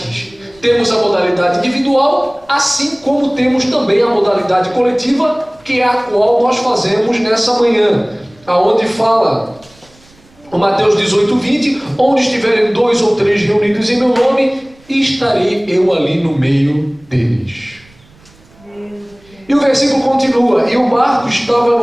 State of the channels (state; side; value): noise; right; rumble, 29 dB below the sound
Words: Temos a modalidade individual, assim como temos também a modalidade coletiva, que é a qual nós fazemos nessa manhã, aonde fala o Mateus 18:20, onde estiverem 2 ou 3 reunidos em meu nome, estarei eu ali no meio deles. E o versículo continua: e o barco estava